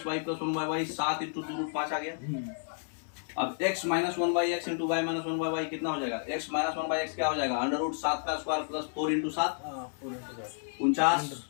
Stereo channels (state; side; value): silent; right; 57 dB below the other